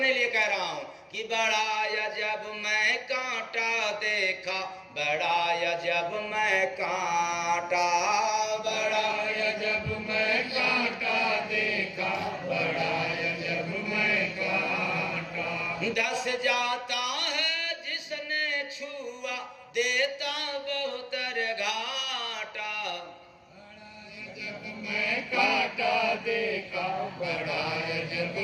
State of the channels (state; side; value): identical; both; correlation 1.00